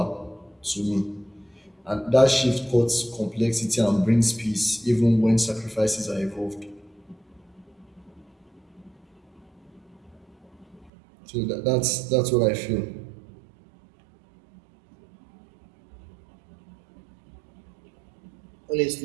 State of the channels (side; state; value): left; drops out; at 10.9 s